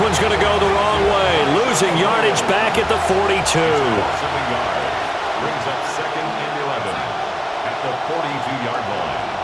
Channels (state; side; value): identical; both; correlation 1.00